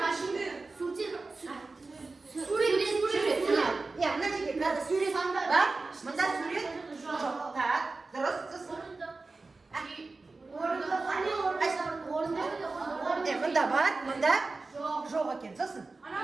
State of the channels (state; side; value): quieter; left; 3.7 dB